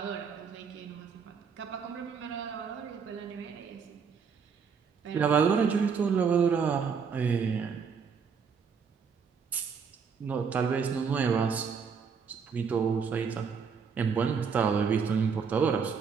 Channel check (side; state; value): left; quieter; 6.1 dB